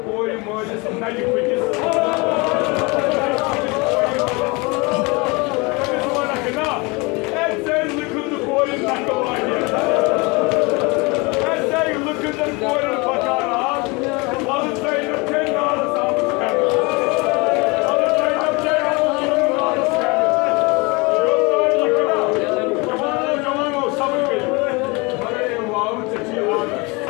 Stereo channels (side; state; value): right; quieter; 26.9 dB